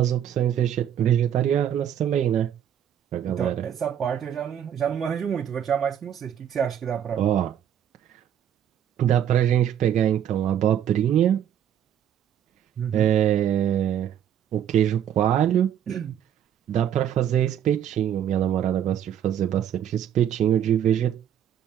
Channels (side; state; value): left; quieter; 9.7 dB